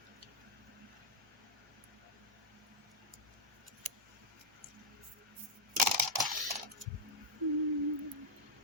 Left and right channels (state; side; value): normal; both; correlation -0.06